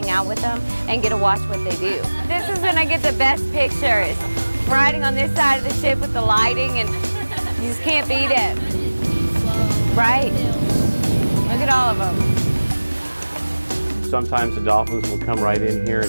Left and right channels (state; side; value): inverted; both; correlation -1.00